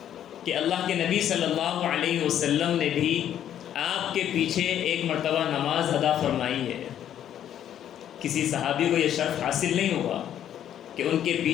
کہ اللہ کے نبی صلی اللہ علیہ وسلم نے بھی آپ کے پیچھے ایک مرتبہ نماز ادا فرمائی ہے. کسی صحابی کو یہ شرف حاصل نہیں ہوا کہ ان کے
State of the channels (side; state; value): right; quieter; 10.4 dB